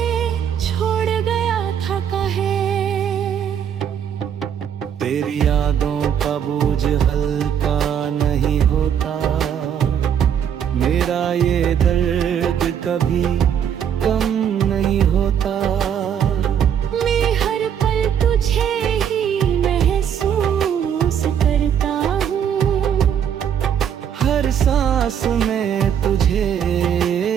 छोड़ गया था। कहे यादों का बोझ हल्का नहीं होता, मेरा ये दर्द कभी कम नहीं होता। मैं हर पल तुझे ही महसूस करता हूँ, हर सांस में तुझे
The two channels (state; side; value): quieter; left; 8.6 dB